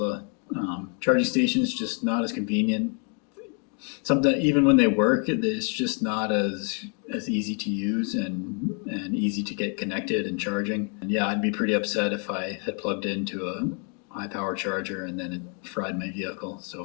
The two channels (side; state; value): right; quieter; 39.0 dB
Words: charging stations, just not as convenient. Sometimes even when they work, it's just not as easy to use and easy to get connected and charging. And yeah, I'd be pretty upset if I had plugged into a high power charger and then it fried my vehicle.